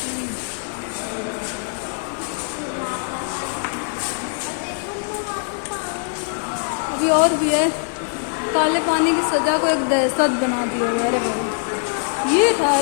अभी और भी है। काले पानी की सजा को एक दहशत बना दिया है। अरे बाबा, ये था,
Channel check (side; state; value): right; silent; 64 dB below the other